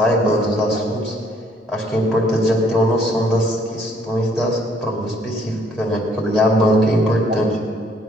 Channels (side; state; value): both; normal; correlation 0.64